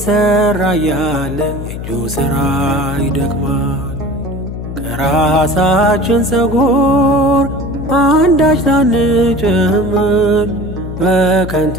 እያለ የእጁ ሥራ ይደክማል። ከራሳችን ፀጉር አንዳች ሳንጨምር በከንቱ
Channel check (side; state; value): left; noise; hum, 8 dB below the sound